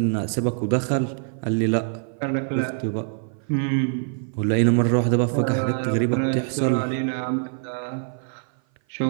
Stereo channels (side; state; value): left; silent; 56 dB below the other